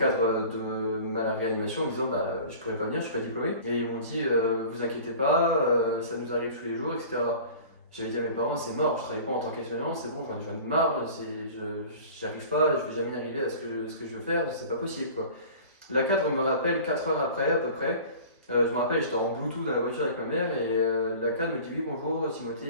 de ma réanimation en disant, bah, je pourrais pas venir, je suis pas diplômé. Et ils m'ont dit, vous inquiétez pas, ça nous arrive tous les jours, etc. J'avais dit à mes parents, c'est mort, je travaille pas en tant qu'aide-soignant, c'est bon, j'en ai marre, j'y arrive pas, je vais jamais y arriver à ce que je veux faire, c'est pas possible quoi. La cadre me rappelle 4 heures après à peu près. Je me rappelle, j'étais en Bluetooth dans la voiture avec ma mère et la cadre me dit oui bonjour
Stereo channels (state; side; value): inverted; both; correlation -0.42